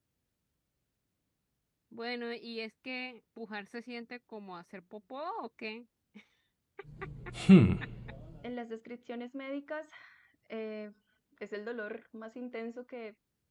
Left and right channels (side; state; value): both; identical; correlation 1.00